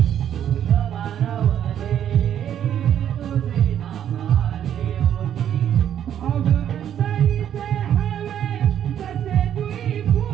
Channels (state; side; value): quieter; left; 9.9 dB